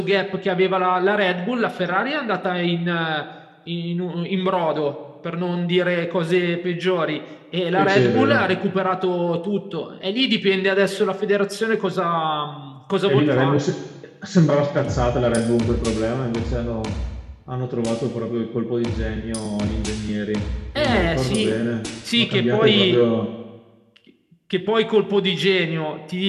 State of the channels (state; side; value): identical; both; correlation 1.00